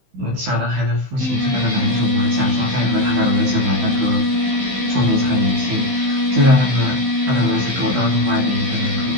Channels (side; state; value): left; late; 16 ms